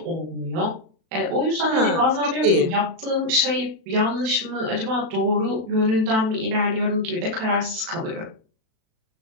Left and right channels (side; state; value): left; late; 37 ms